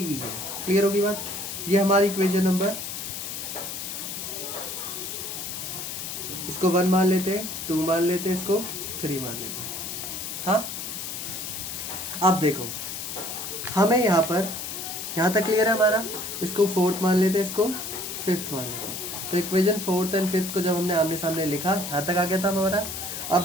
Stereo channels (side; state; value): left; noise; hiss, 6 dB below the sound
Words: है। क्लियर होगी बात। ये हमारी इक्वेशन नंबर, इसको 1 मान लेते हैं, 2 मान लेते हैं, इसको 3 मान लेते हैं। हाँ अब देखो हमें यहाँ पर, यहाँ तक क्लियर है हमारा। इसको 4th मान लेते हैं, इसको 5th मान लेते हैं। तो इक्वेशन 4th और 5th को जब हमने आमने सामने लिखा, यहाँ तक आ गया था हमारा।